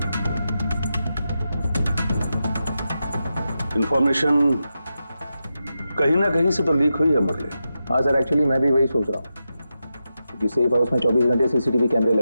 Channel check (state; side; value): inverted; both; correlation -0.89